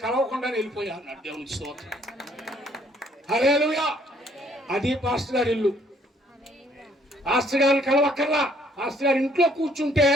కలవకుండా వెళ్ళిపోయా అన్నాడు. దేవునికి స్తోత్రం. హల్లెలూయా. అది పాస్టర్ గారి ఇల్లు. పాస్టర్ గారిని కలవక్కర్లా. పాస్టర్ గారి ఇంట్లో కూర్చుంటే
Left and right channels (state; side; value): normal; both; correlation 0.64